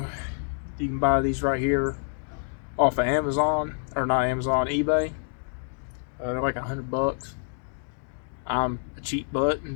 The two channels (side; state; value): right; silent; 56 dB below the other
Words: you can buy these right here off of Amazon, or not Amazon, eBay. They're like $100. I'm a cheap butt